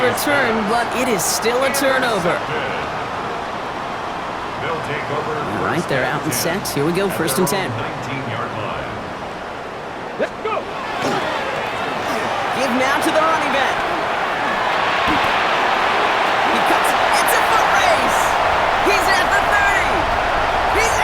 return, but it is still a turnover. All right, they're out and set. Here we go, 1st and 10. 19-yard line. Let's go. Give now to the running back. He cuts. It's a foot race. He's at the 30. He's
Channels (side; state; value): both; identical; correlation 1.00